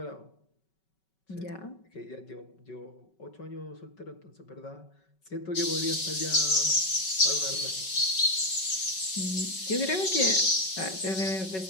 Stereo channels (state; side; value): late; right; 5.3 ms